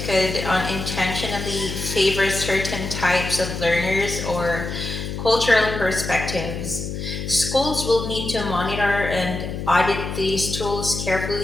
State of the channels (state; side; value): noise; left; hum, 5 dB below the sound